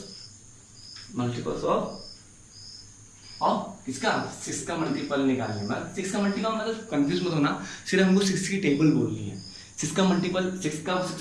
ऑफ किसका, 6 का मल्टीपल निकालने में। 6 का मल्टीपल मतलब कंफ्यूज मत होना, सिर्फ हमको 6 की टेबल बोलनी है। 6 का मल्टीपल, 6 का 6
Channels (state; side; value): identical; both; correlation 1.00